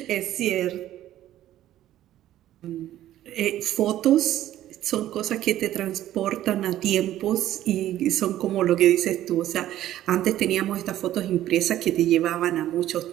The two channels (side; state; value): left; quieter; 13.1 dB